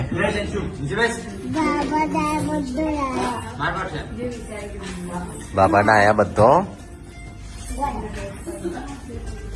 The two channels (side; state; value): both; identical; correlation 1.00